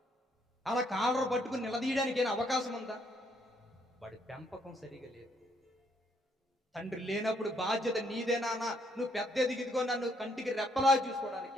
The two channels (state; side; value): normal; both; correlation 0.70